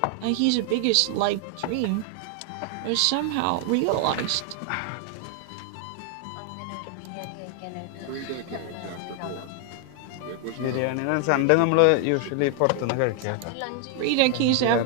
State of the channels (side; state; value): both; different; correlation 0.00